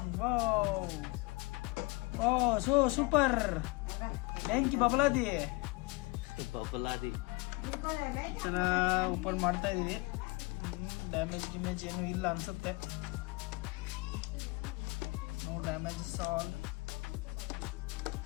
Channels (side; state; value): right; quieter; 25.6 dB